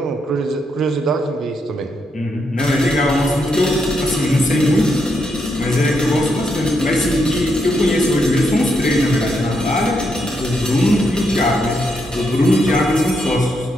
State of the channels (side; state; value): both; normal; correlation 0.80